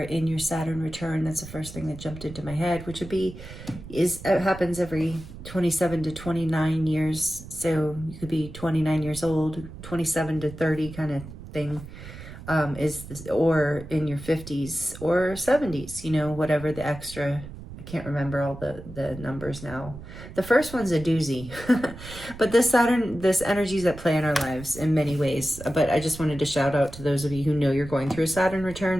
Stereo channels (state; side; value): noise; right; rumble, 14 dB below the sound